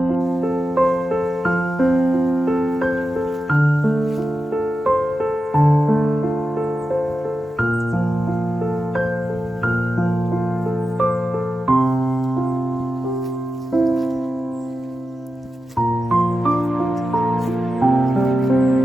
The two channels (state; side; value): normal; both; correlation 0.91